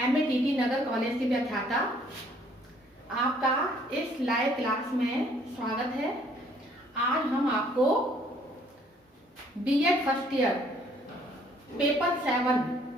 MATT नगर college की व्याख्याता आपका इस लाइव क्लास में स्वागत है। आज हम आपको B.Ed first year paper 7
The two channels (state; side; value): normal; both; correlation 0.62